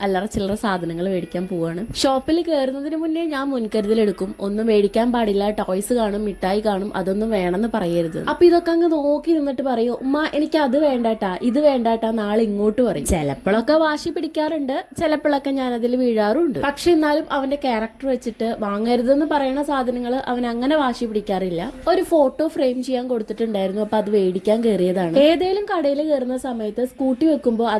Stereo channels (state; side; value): identical; both; correlation 1.00